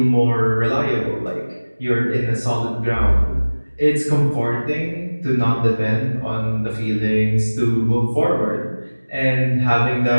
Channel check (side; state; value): both; inverted; correlation -1.00